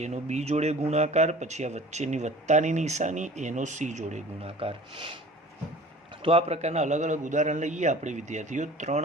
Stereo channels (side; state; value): both; normal; correlation 0.44